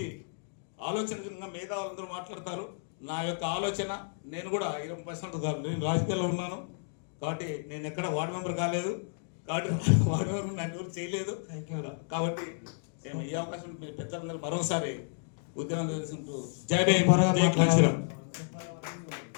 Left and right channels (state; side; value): silent; right; digital silence